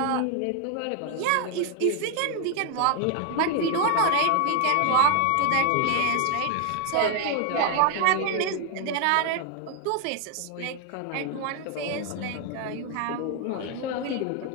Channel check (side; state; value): both; different; correlation 0.00